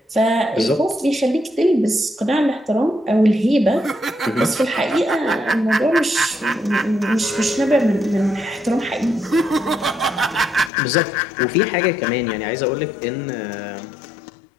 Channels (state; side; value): drops out; right; at 10.7 s